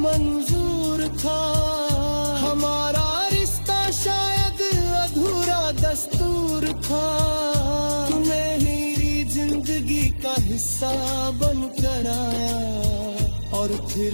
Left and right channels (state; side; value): inverted; both; correlation -1.00